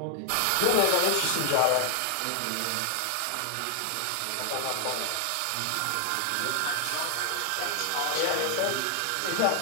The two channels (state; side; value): different; both; correlation 0.00